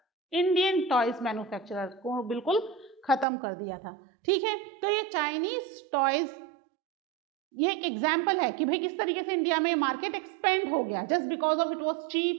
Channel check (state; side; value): drops out; left; at 3.2 s